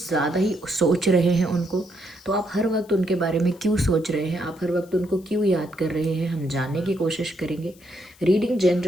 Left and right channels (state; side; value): noise; left; hiss, 27 dB below the sound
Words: ज़्यादा ही सोच रहे हैं उनको, तो आप हर वक्त उनके बारे में क्यों सोच रहे हैं, आप हर वक्त उनको क्यों याद कर रहे हैं, हम जानने की कोशिश करेंगे। रीडिंग